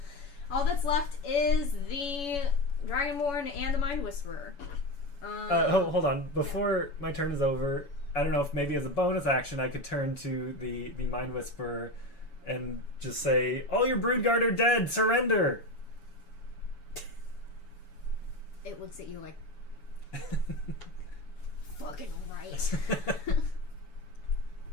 All that's left is the Dragonborn and the Mind Whisperer. Hold on. Before my turn is over, I don't know if maybe as a bonus action I could turn to the Mind Whisperer and just say, "All your Broodguard are dead. Surrender." It looks at you like, fucking right.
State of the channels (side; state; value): right; late; 7.1 ms